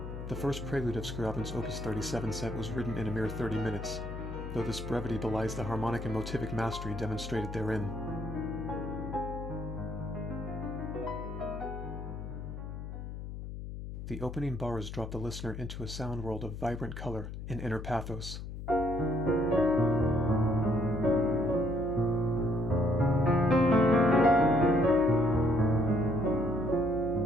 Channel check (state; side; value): noise; left; hum, 8 dB below the sound